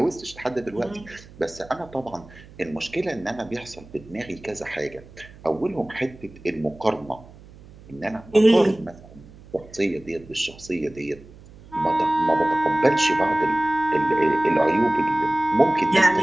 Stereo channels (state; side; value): noise; right; hum, 21 dB below the sound